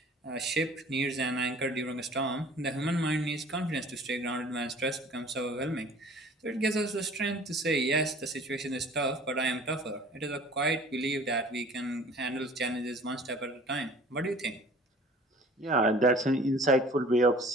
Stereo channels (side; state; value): both; normal; correlation 0.48